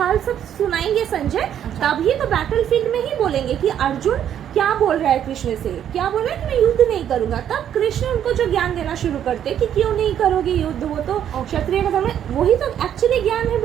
सब सुनाएंगे संजय, तभी तो बैटलफील्ड में ही बोलेंगे कि अर्जुन क्या बोल रहा है कृष्ण से, क्या बोल रहा है कि मैं युद्ध नहीं करूंगा। तब कृष्ण उनको जो ज्ञान देना शुरू करते कि क्यों नहीं करोगे युद्ध, वो तो क्षत्रिय का धर्म है, वही तो एक्चुअली ज्ञान है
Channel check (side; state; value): left; quieter; 9.9 dB